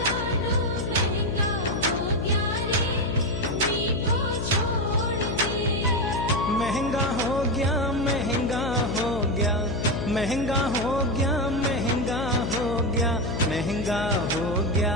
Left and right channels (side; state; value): left; noise; hum, 3 dB below the sound